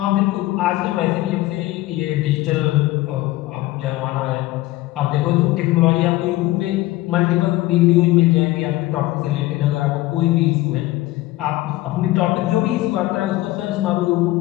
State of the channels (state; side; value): quieter; right; 17.6 dB